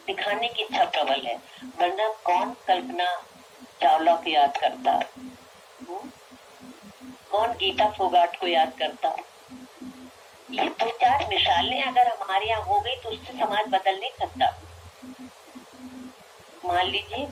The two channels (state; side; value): identical; both; correlation 1.00